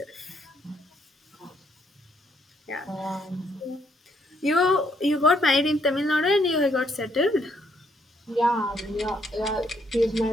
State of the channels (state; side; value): normal; both; correlation 0.71